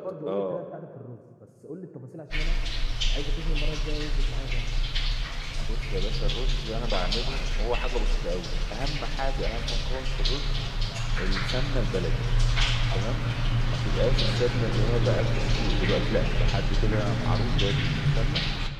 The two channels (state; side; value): identical; both; correlation 1.00